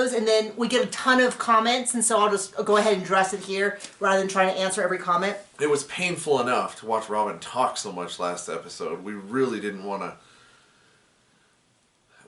and then we get a ton of comments, and so I'll just go ahead and address it here, rather than trying to answer every comment. It was painful enough to watch Robin talk so much last episode. We really didn't want to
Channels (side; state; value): both; identical; correlation 1.00